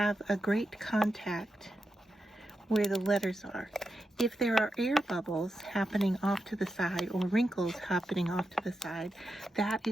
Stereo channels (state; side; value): normal; both; correlation 0.88